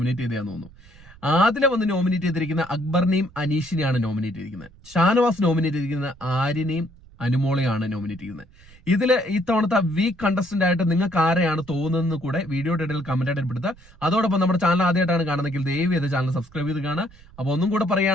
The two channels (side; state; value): right; noise; rumble, 24 dB below the sound